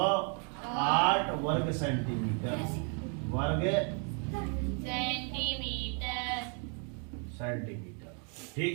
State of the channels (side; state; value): left; quieter; 38.8 dB